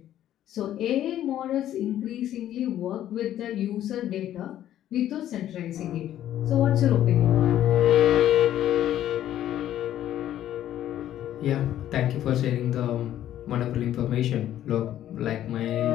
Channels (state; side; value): quieter; right; 12.0 dB